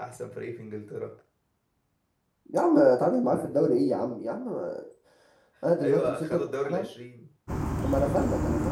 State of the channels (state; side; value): identical; both; correlation 1.00